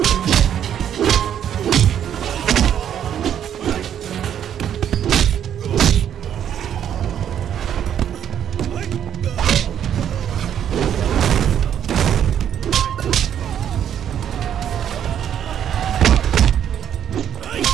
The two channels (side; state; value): left; quieter; 9.6 dB